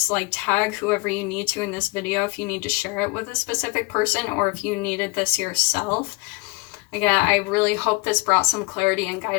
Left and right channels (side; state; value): right; quieter; 26.4 dB